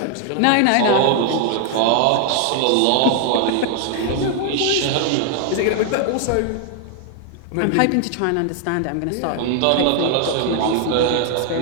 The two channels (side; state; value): both; different; correlation 0.00